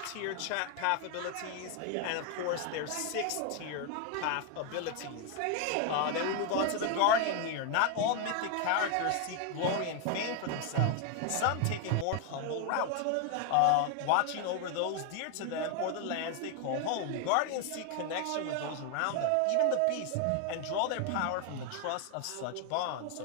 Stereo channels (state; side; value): different; both; correlation 0.01